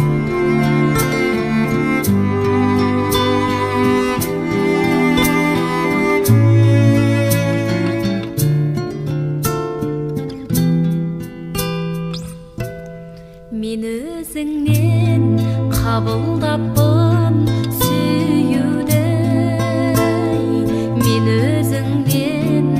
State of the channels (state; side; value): identical; both; correlation 1.00